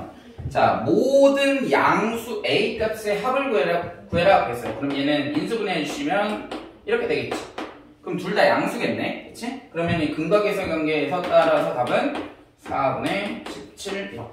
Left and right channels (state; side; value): identical; both; correlation 1.00